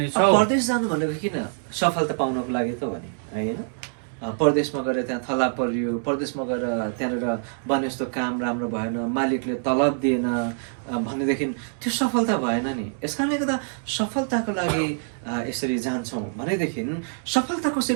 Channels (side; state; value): left; silent; digital silence